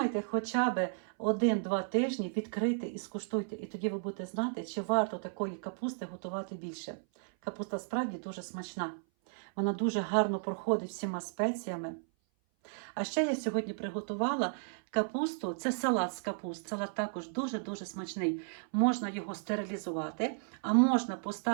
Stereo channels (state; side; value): silent; left; 55 dB below the other